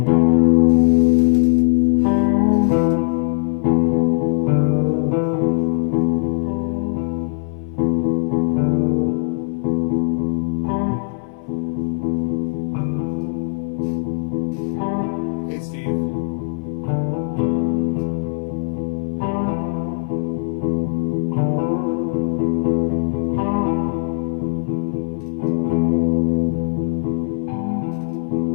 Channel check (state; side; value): silent; right; 61 dB below the other